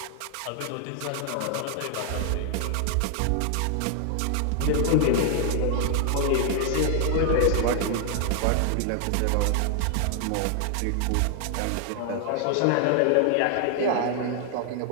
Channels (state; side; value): different; both; correlation 0.00